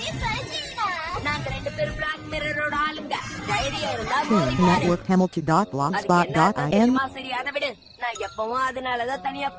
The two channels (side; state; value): both; identical; correlation 1.00